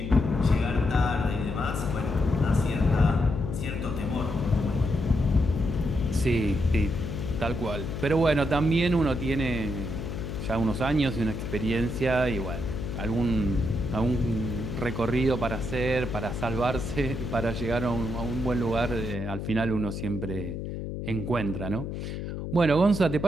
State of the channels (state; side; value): noise; left; hum, 6 dB below the sound